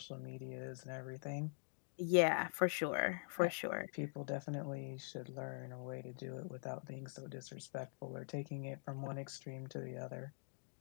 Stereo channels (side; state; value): right; silent; digital silence